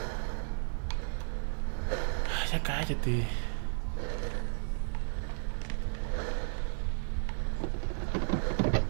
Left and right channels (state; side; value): silent; left; 56 dB below the other